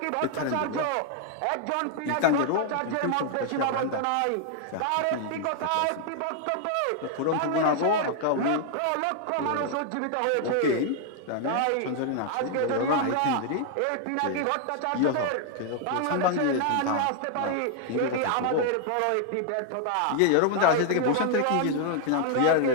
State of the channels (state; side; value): different; both; correlation 0.00